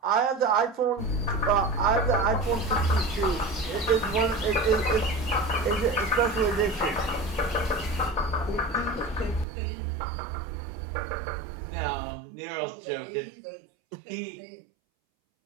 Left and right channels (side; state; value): left; drops out; at 9.5 s